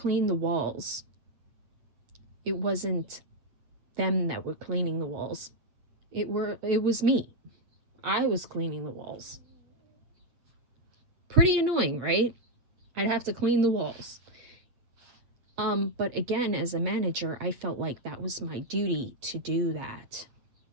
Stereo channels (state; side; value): late; left; 8.5 ms